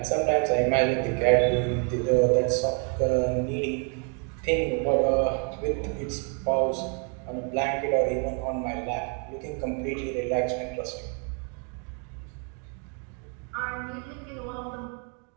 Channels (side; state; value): left; quieter; 38.8 dB